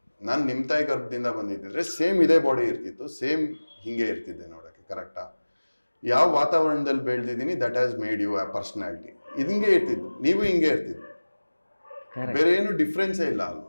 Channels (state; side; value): inverted; both; correlation -1.00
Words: ನಾನು ನಿಮ್ಮ ತಾಯಿ ಗರ್ಭದಿಂದ ಬಂದಿದ್ದಿದ್ರೆ ಸೇಮ್ ಇದೇ ಬಾಡಿ ಇರ್ತಿತ್ತು, ಸೇಮ್ ಹಿಂಗೆ ಇರ್ತಿದ್ದೆ ನೋಡೋಕ್ಕೆ, ಕರೆಕ್ಟಾ? ಯಾವ ವಾತಾವರಣದಲ್ಲಿ ಬೆಳೆದಿದ್ದೀನಿ ದಟ್ ಹ್ಯಾಸ್ ಮೇಡ್ ಯು ಆ ಪರ್ಸ್ನಾಲಿಟಿ. ಇದು ಹಿಂಗೆ ಇರ್ತಿದ್ದು, ನೀವು ಹಿಂಗೆ ಇರ್ತಿದ್ದು, ಬೇರೆ ಏನು ಡಿಫ್ರೆನ್ಸೇ ಇಲ್ಲ